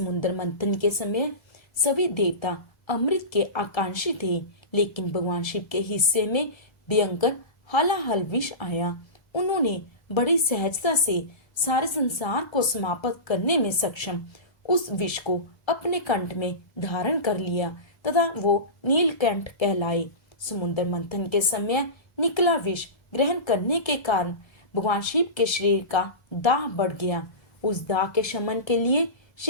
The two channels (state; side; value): late; right; 1.3 ms